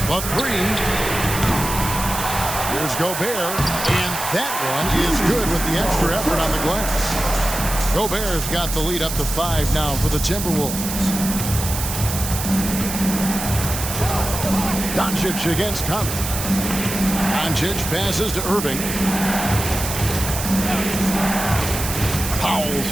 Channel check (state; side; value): noise; right; hiss, 5 dB below the sound